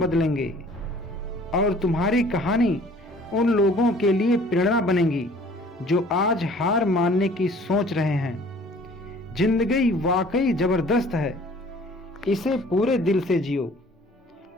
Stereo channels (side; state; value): both; normal; correlation 0.52